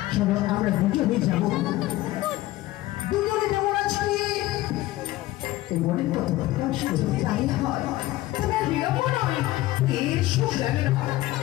চলো আমরা দুজনে যাবো দুজনে যাবো আজকে এই মনের কথা প্রকাশ করে তাই হয় তবে আর বিলম্ব নয় এসো প্রেরণা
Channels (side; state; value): right; quieter; 16.9 dB